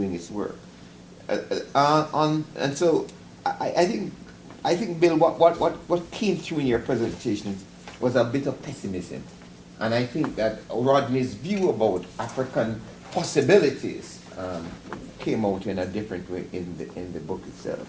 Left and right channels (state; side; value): identical; both; correlation 1.00